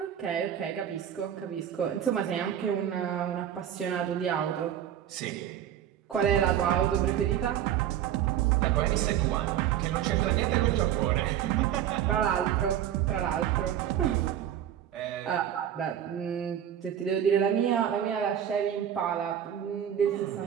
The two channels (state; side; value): quieter; left; 10.3 dB